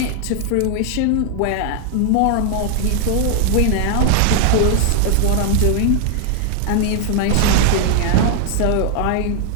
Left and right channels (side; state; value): both; different; correlation 0.00